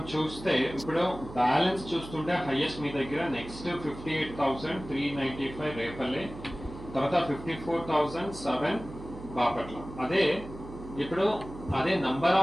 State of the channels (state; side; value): noise; right; hum, 13 dB below the sound